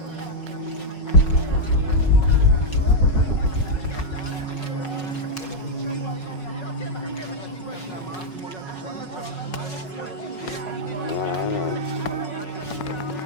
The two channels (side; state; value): right; late; 5.4 ms